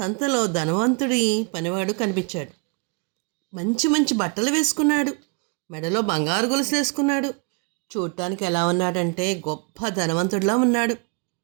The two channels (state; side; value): quieter; left; 36.6 dB